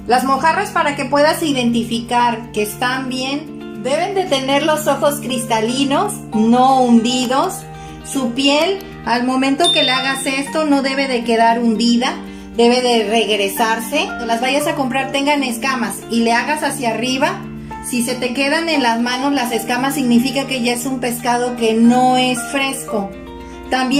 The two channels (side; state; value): both; identical; correlation 1.00